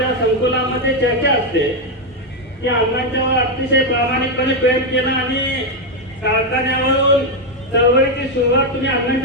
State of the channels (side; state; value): both; normal; correlation 0.04